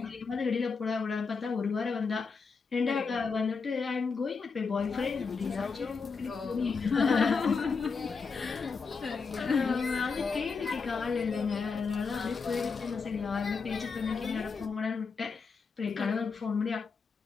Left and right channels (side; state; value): right; quieter; 5.0 dB